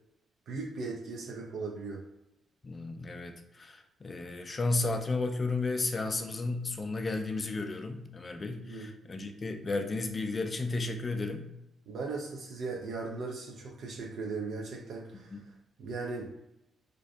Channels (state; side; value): normal; both; correlation 0.80